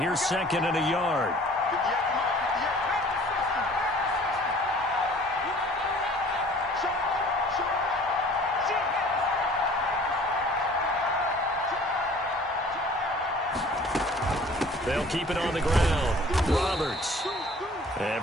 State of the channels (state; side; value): normal; both; correlation 0.50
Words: 2nd and a yard. They'll keep it on the ground. Roberts. And